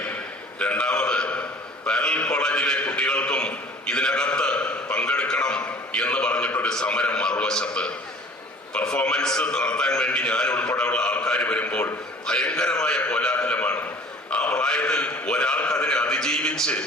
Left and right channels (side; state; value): both; normal; correlation 0.49